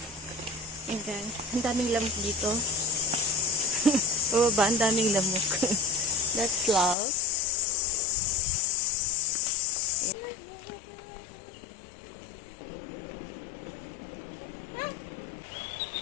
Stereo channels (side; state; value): right; drops out; at 7.0 s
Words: yun guys. Ang daming lamok dito. Bababa, ang daming lamok. That's love.